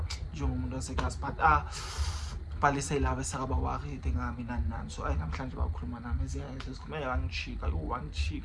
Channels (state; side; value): identical; both; correlation 1.00